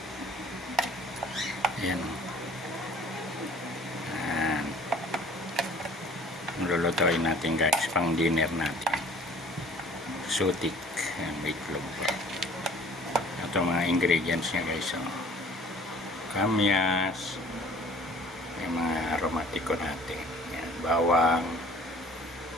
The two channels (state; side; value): normal; both; correlation 0.51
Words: ayan, ayan. Lulutuin natin guys, pang dinner natin, exotic. Ayan, may itlog pa. Ito mga ingredients niya guys, kamyas, yung mga aromatiko natin. Ayan, bawang,